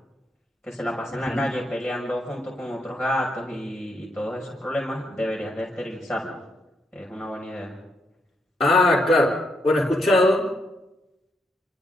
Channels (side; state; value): both; normal; correlation 0.78